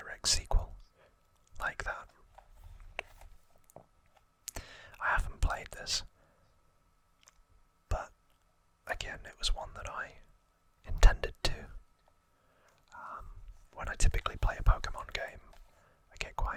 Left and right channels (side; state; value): both; identical; correlation 1.00